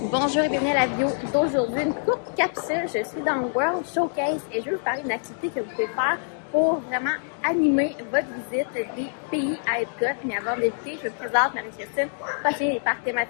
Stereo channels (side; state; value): right; silent; digital silence